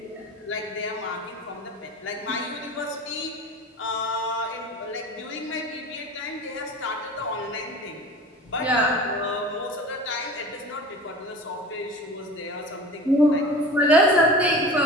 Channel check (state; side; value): normal; both; correlation 0.37